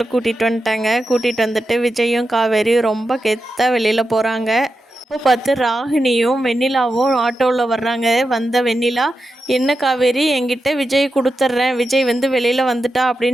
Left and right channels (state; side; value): normal; both; correlation 0.89